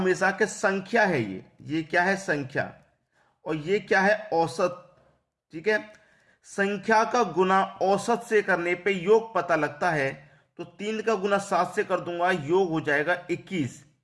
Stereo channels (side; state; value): both; identical; correlation 1.00